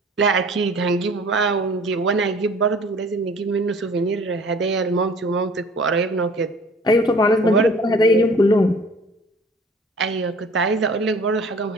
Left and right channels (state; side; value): normal; both; correlation 0.50